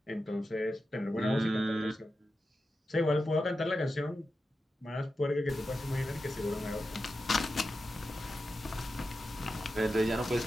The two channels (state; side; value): normal; both; correlation 0.90